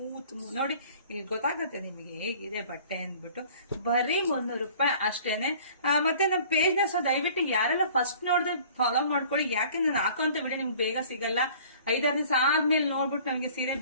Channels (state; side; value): inverted; both; correlation -0.50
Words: ನೋಡಿ ಇಲ್ಲಿ ಗೊತ್ತಾಗುತ್ತೆ ನಿಮಗೆ ಹೇಗಿದೆ ಬಟ್ಟೆ ಅಂದ್ಬಿಟ್ಟು. ಬರೀ 300 ರೂಪಾಯಿ ಅಷ್ಟೇನೆ. ಮತ್ತೆ ನಮ್ಮ ಪೇಜ್ ನ ದಯವಿಟ್ಟು ಯಾರೆಲ್ಲ ಫಸ್ಟ್ ನೋಡಿದ್ರೆ ಫಾಲೋ ಮಾಡ್ಕೊಳ್ಳಿ. ಯಾಕೆ ನಾನು ಹಾಕೋಂತ ವಿಡಿಯೋ ನಿಮ್ಗೆ ಬೇಗ ಸಿಗಲ್ಲ. 5-6 ದಿವಸ ಆದ್ಮೇಲೆ ನೋಡ್ಬಿಟ್ಟು ನಮಗೆ ಸೀರೆ